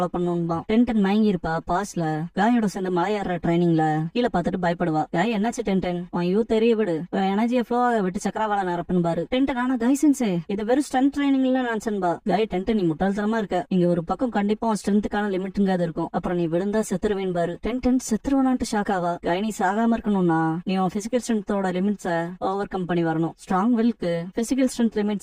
பண்ணணும்பா. டென் மயங்கி இருப்பா. பாஸ்ல காயோட சேர்ந்து மலையேற ட்ரைனிங்ல கீழே பார்த்துட்டு பயப்படுவா. காய் என்னாச்சு டென் உன் யூ தெரிய விடு, எனர்ஜியை ஃப்ளோ விட்டு சக்கரவாள நிரப்புன்பாரு. டென் ஆனா காய் சென்சே இது வெறும் ஸ்ட்ரென்த் ட்ரைனிங்ல நினைச்சன்பா. காய் டென் நீ முட்டாள்தனமா இருக்க, இங்க ஒரு பக்கம் கண்டிப்பா ஸ்ட்ரென்த்துக்கான லிமிட்ங்காது இருக்கும், அப்புறம் நீ விழுந்தா செத்துருவேன் பாரு. டென் செத்துருவானான்ட்டு ஷாக் ஆவா. காய் நீ சாகாம இருக்கணும்னா நீ உன் பிசிக்கல் ஸ்ட்ரென்த்தோட லிமிட்ஸை ஓவர் கம் பண்ணி வரணும். ஸ்ட்ராங் வில்க்கு physical strength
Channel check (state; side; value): identical; both; correlation 1.00